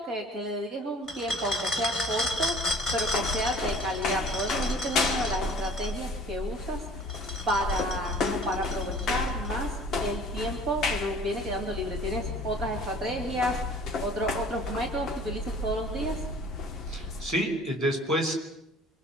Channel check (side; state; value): both; normal; correlation 0.49